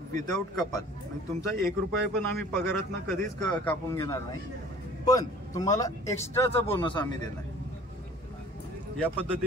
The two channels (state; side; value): normal; both; correlation 0.49